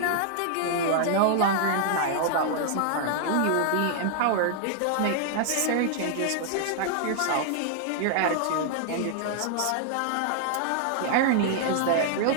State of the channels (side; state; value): both; different; correlation -0.01